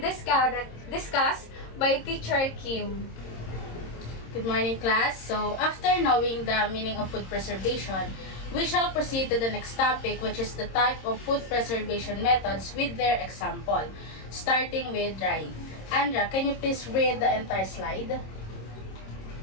discussed by Teacher Kim. Good morning, class. So, after knowing the meaning of food preservation, we shall proceed to the next topic, which is the type of food preservation methods with their example, starting with drying. Andra, can you please read the entire slide?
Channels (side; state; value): right; late; 26 ms